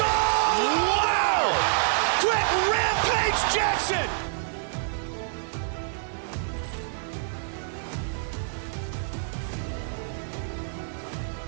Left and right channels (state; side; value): silent; left; digital silence